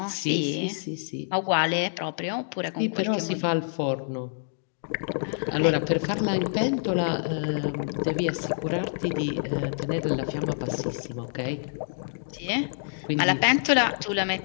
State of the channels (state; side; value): silent; right; digital silence